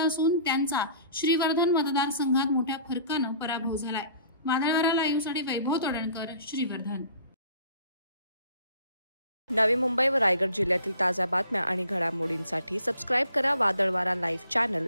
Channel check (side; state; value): both; inverted; correlation -0.51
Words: असून त्यांचा श्रीवर्धन मतदारसंघात मोठ्या फरकानं पराभव झालाय। वादळवारा लाईव्हसाठी वैभव तोडणकर, श्रीवर्धन। नवी मुंबई व रायगड जिल्ह्यातील ताज्या बातम्या आणि घडामोडींसाठी सबस्क्राइब करा वादळवारा लाईव्ह चॅनल